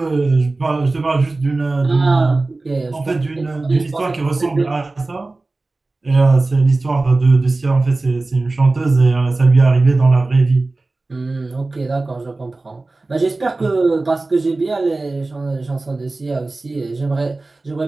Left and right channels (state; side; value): quieter; left; 3.3 dB